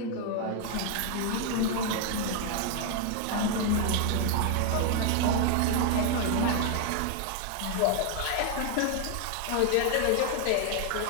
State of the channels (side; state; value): both; different; correlation 0.00